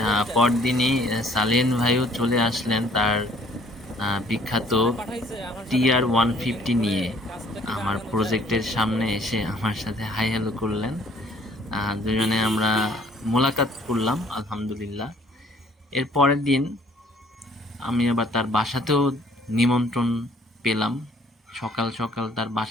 পরদিনই সালেন ভাইও চলে আসলেন তার বিখ্যাত TR-150 নিয়ে আমার প্রজেক্টের সামনে এসে আমার সাথে হাই হ্যালো করলেন। দুজনে আমরা মোলাকাত করলাম আলহামদুলিল্লাহ। এর পরের দিন আমি আবার তার বাসাতেও নিমন্ত্রণ পেলাম। সকাল সকাল তার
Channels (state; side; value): normal; both; correlation 0.59